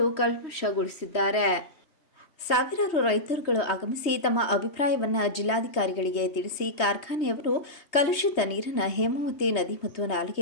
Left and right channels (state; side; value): late; right; 3.0 ms